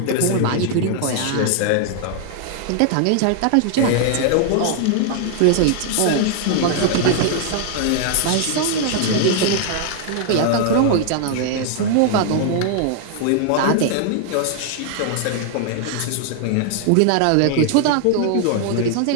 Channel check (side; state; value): both; different; correlation 0.00